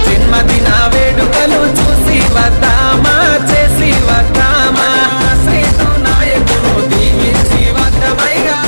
జన్మదిన వేడుకలు చూసి వద్దామా చేసి వద్దామా శ్రీతు నాయకుడు దీవించి వద్దమైగా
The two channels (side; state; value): both; inverted; correlation -1.00